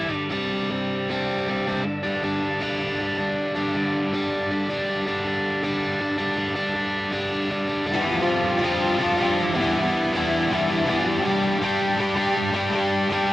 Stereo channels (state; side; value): normal; both; correlation 0.95